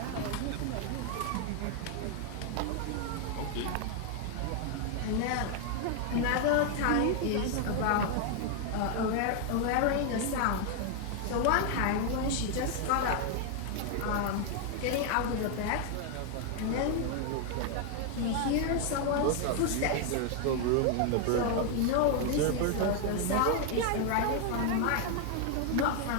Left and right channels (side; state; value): both; different; correlation 0.00